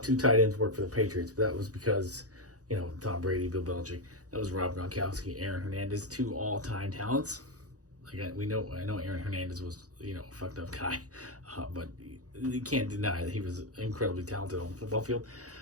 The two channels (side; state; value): left; late; 0.67 ms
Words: tight ends work for the Patriots, but that was because, Tom Brady, Bill Belichick. That was Rob Gronkowski, Aaron Hernandez, 2 all-time talents. I know Aaron Hernandez was, a fucked up guy, but you can't deny that he was incredibly talented on the football field.